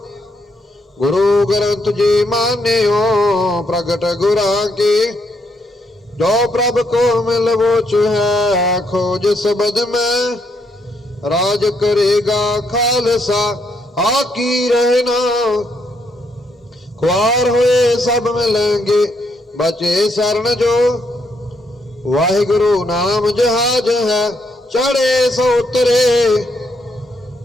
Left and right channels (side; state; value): both; normal; correlation 0.75